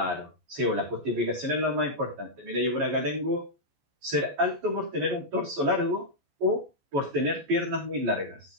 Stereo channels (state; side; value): late; left; 14 ms